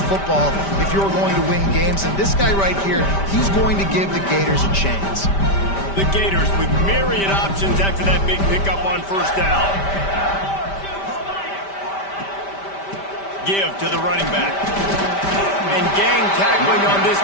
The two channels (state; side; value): late; right; 5.1 ms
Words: if you're going to win games. And this guy right here, he's going to give the Gators a chance. The Gators with myriad options after that big pickup on first down. Give to the running back. And gang tackling on this